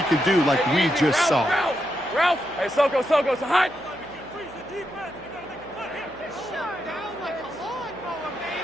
could do like we just saw. Ralph. Hey, Soko, so hot.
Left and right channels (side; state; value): right; noise; hum, 22 dB below the sound